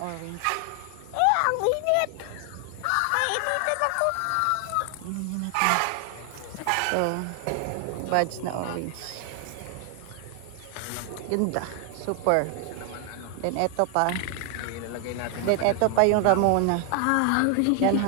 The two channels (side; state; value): both; different; correlation 0.00